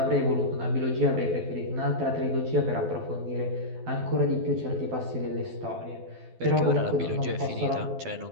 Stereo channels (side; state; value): left; late; 12 ms